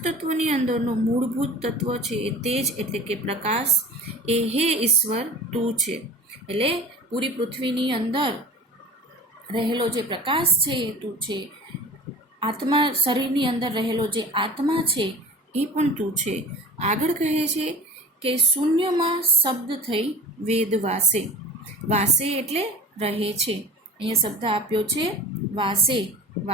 તત્વોની અંદરનો મૂળભૂત તત્વ છે એ તેજ એટલે કે પ્રકાશ, એ હે ઈશ્વર તું છે. એટલે પૂરી પૃથ્વીની અંદર રહેલો જે પ્રકાશ છે એ તું છે. આત્મા, શરીરની અંદર રહેલો જે આત્મા છે એ પણ તું છે. આગળ કહે છે કે શૂન્યમાં શબ્દ થઈ વેદ વાસે. વાસે એટલે રહે છે. અહીંયા શબ્દ આપ્યો છે વાસે.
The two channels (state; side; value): normal; both; correlation 0.40